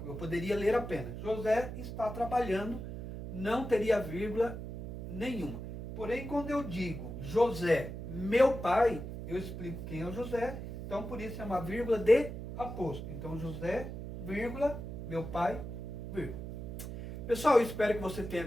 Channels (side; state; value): right; noise; hum, 8 dB below the sound